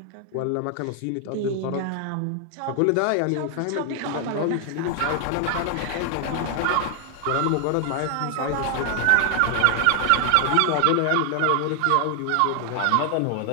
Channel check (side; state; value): both; different; correlation 0.00